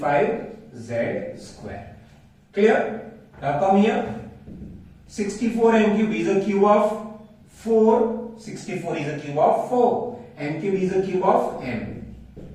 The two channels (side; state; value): both; identical; correlation 1.00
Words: square. Clear? Now come here. 64 m cube is a cube of 4. 64 is a cube of 4. M cube is a cube of m.